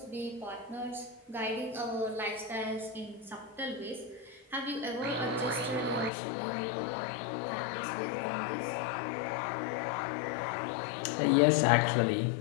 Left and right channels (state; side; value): drops out; right; at 6.1 s